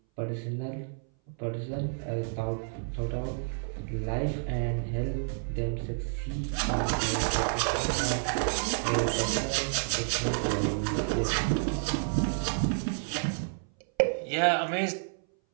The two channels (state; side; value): silent; left; 58 dB below the other